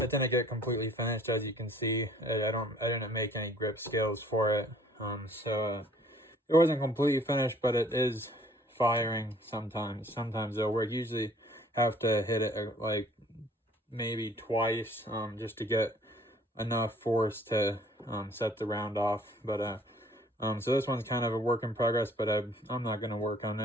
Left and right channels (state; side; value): normal; both; correlation 0.56